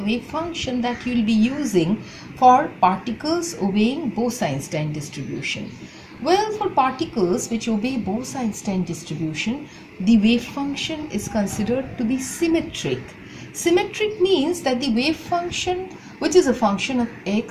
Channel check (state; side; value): identical; both; correlation 1.00